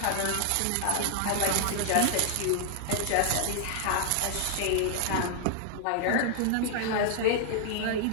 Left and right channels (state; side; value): different; both; correlation 0.00